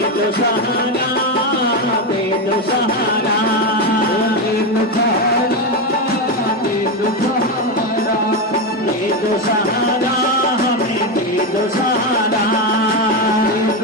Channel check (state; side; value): normal; both; correlation 0.11